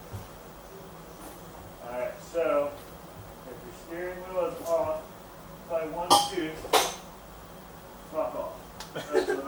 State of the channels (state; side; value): identical; both; correlation 1.00